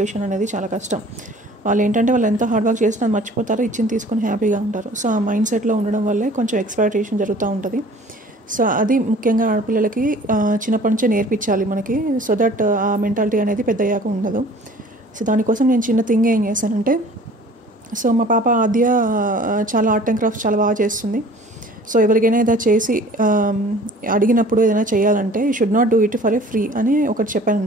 అనేది చాలా కష్టం. వాళ్ళు ఏంటంటే వాళ్ళు ఎంత హార్డ్ వర్క్ చేసినా మర్చిపోతారు, ఇచ్చింది తీసుకొని హ్యాపీగా ఉంటారు. సో ఆ మైండ్ సెట్లో ఉండడం వల్లే కొంచెం ఎక్స్‌ప్లాయిటేషన్ జరుగుతూ ఉంటుంది. సో అది ముఖ్యంగా ఆడపిల్లలకి చిన్నప్పటి నుంచే నేర్పించాలి మనకి, సో దట్ ఆ మెంటాలిటీ అనేది పెద్దయ్యాక ఉండదు. సో దానికోసం నేను చిన్న థింగ్ ఏం చేశానంటే, సో మా పాప ఆద్య చాలా ఆర్ట్ అండ్ క్రాఫ్ట్స్ చాలా బాగా చేస్తుంది. సో ఎవరికైనా ఏదైనా చేసి అడిగినప్పుడు ఏదైనా చేయాలంటే you should not do it for a free అని ఒకటి చెప్పాను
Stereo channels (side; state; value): both; normal; correlation 0.49